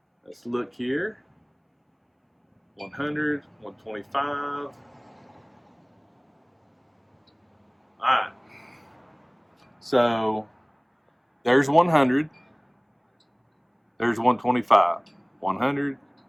Let's look here. 100, 125. All right. So there's 100. There's 125. 100,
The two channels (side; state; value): both; identical; correlation 1.00